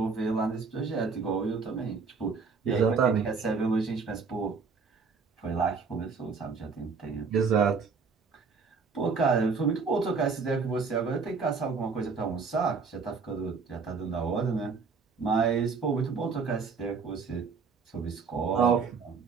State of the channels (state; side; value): quieter; left; 5.1 dB